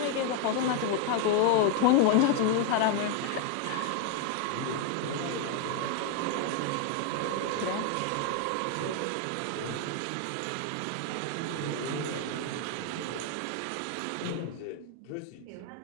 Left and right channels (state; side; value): different; both; correlation 0.01